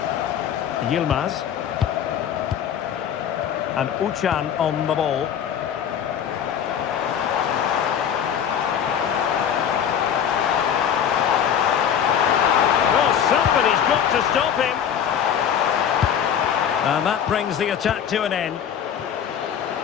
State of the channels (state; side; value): quieter; right; 8.7 dB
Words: Yilmaz. And Uchan on the ball. Well, somebody's got to stop him. And that brings the attack to an end.